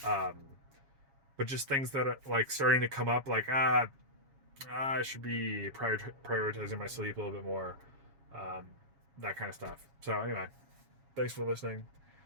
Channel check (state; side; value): late; left; 7.2 ms